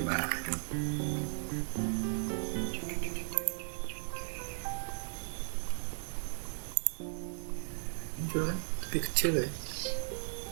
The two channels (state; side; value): silent; left; 54 dB below the other